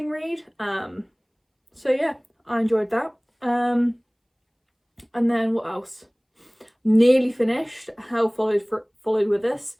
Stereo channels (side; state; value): both; identical; correlation 1.00